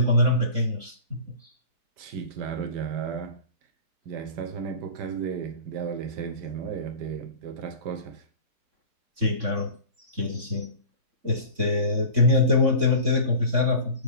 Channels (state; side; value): late; left; 3.6 ms